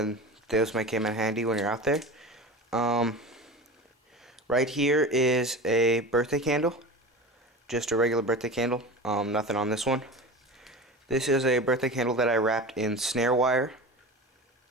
those might come in handy when you're out there. Right here is a birthday candle. Just a regular birthday candle. Nothing on this one. This is a birthday candle that I wrapped in snare wire.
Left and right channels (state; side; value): normal; both; correlation 0.31